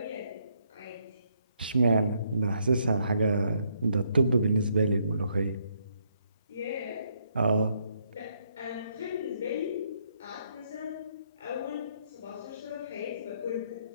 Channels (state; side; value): inverted; both; correlation -0.73